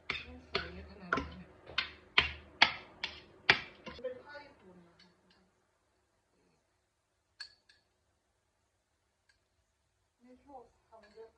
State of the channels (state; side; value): identical; both; correlation 1.00